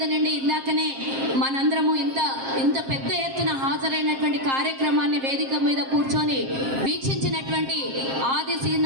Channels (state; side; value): late; left; 7.5 ms